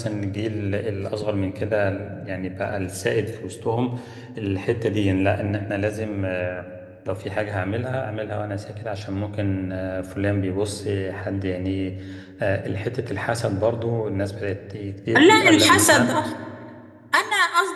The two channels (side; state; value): both; identical; correlation 1.00